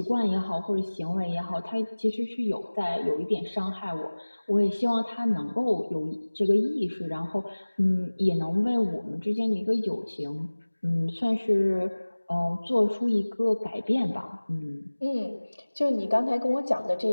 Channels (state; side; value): inverted; both; correlation -1.00